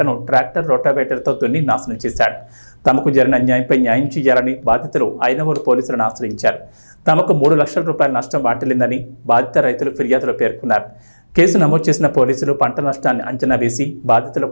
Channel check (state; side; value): inverted; both; correlation -1.00